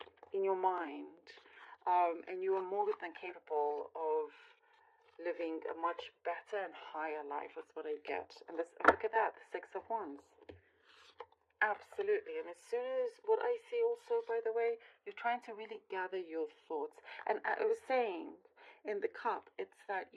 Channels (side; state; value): both; identical; correlation 1.00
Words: your mind, and you are more than capable of living a much better and higher life. That's what I get. And look at that, the Six of Wands. Absolutely. And as soon as what I see also, by the way, you're trying to really gather your thoughts. And I was saying in the cup, it's that